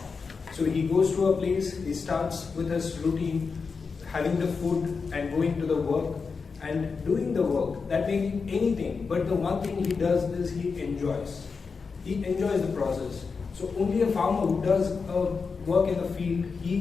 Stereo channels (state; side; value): quieter; right; 5.0 dB